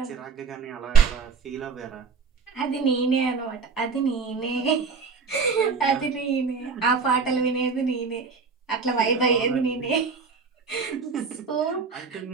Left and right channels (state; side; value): quieter; left; 5.2 dB